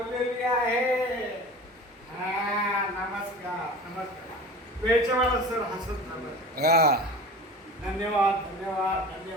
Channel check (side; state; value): both; normal; correlation 0.37